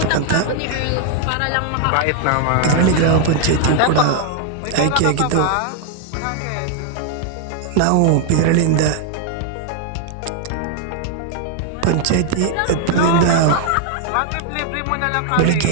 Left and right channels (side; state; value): both; different; correlation 0.00